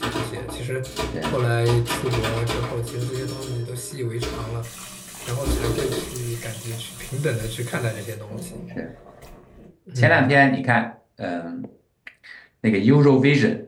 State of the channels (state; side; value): identical; both; correlation 1.00